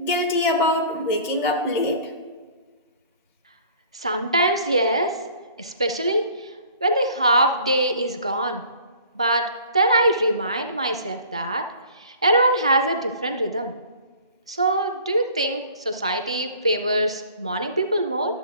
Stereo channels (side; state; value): both; inverted; correlation -0.49